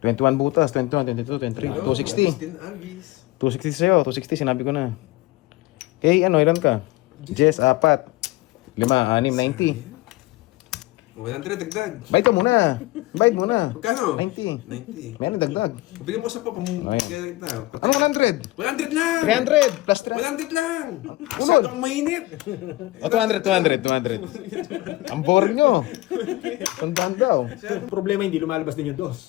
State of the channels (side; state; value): right; quieter; 19.5 dB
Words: butas, 21, 22, 23, 260. Agustin Alvis. 260 sa'yo, 260 sinabi ko na. Okay, ano, ilan ka? Jess, 4. 5, 6, 90. 100 dagdag. Bayad ka muna. Bayad muna. Magkano? 90. 90. Meron dagdag. Bigyan mo sa pa Ayun. kita. Ano 100? 100 lang! 300 plus 300. 100 lang! Masyadong mainit. O, 200. Ang boring nyo. Tandaan daw. Problema hindi lumalabas din yung